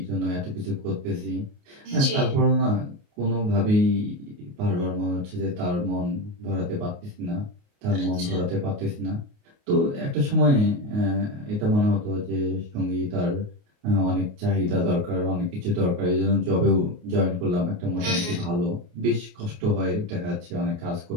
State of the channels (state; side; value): late; left; 29 ms